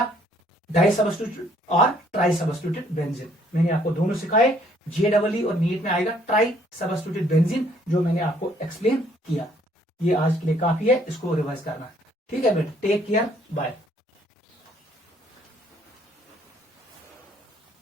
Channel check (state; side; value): normal; both; correlation 0.64